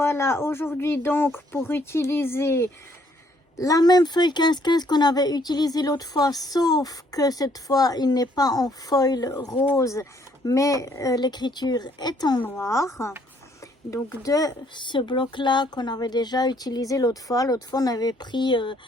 aujourd'hui donc pour utiliser la même feuille 15-15 qu'on avait utilisée l'autre fois, sauf que cette fois il n'est pas en foil rose mais l'écriture est en noir. Donc de ce bloc là qu'on avait déjà utilisé l'autre fois on avait pris,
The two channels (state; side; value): normal; both; correlation 0.66